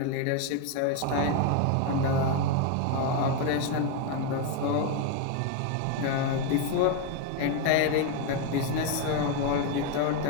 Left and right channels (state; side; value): different; both; correlation 0.02